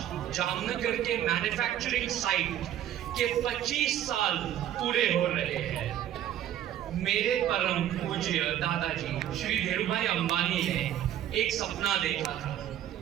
जामनगर के मैन्युफैक्चरिंग साइट के 25 साल पूरे हो रहे हैं। मेरे परम पूज्य दादाजी श्री धीरूभाई अंबानी ने एक सपना देखा था।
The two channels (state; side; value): quieter; left; 11.5 dB